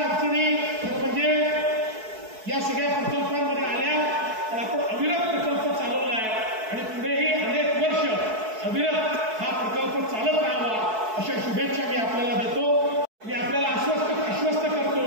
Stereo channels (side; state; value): left; late; 4.6 ms